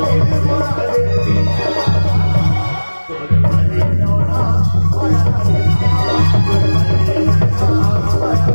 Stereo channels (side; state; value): both; inverted; correlation -1.00